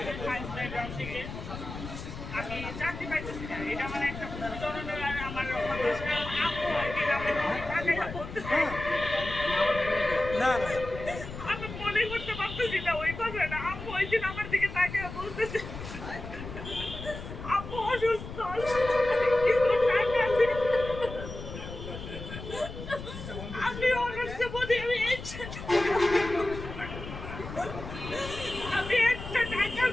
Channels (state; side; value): noise; left; rumble, 10 dB below the sound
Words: সায়েন্স ব্যাকগ্রাউন্ড থেকে। আমি চাকরি পাইতেছি না, এটা মানে একটা ধরনের আমার হতাশ। কারণ আপু একদিন আমার টাকাটা করতেছে না আমি মনে করতে পারতেছি না ওই কথাটা। আপু ওই দিন আমার দিকে তাকে বলতেছে আপু অসুস্থ, কিছু টাকা আছে। আমি অসুস্থ বলি আমি একটা টাকা